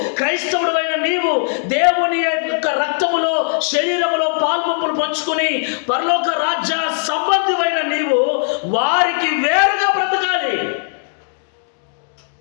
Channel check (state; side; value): silent; right; digital silence